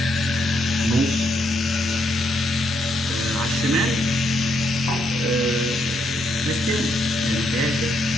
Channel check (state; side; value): normal; both; correlation 0.76